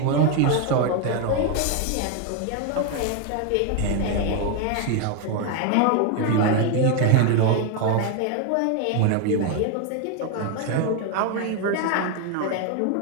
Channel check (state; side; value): different; both; correlation 0.01